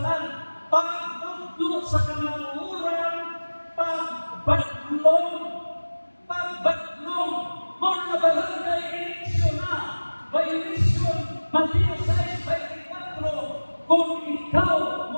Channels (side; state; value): both; inverted; correlation -1.00